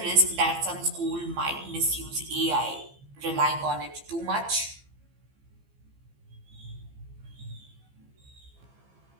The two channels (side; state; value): left; late; 15 ms